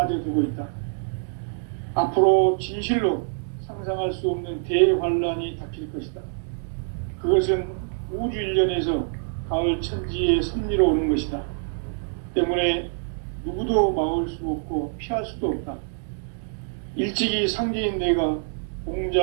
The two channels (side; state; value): left; silent; digital silence